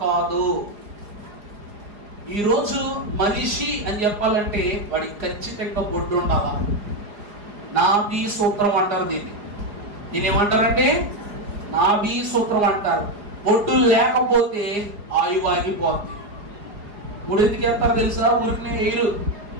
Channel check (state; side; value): late; left; 4.9 ms